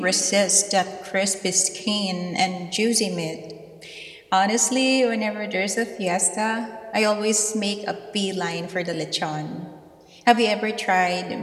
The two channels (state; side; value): identical; both; correlation 1.00